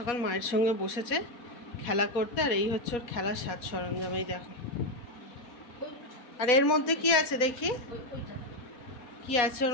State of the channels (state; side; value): late; right; 4.2 ms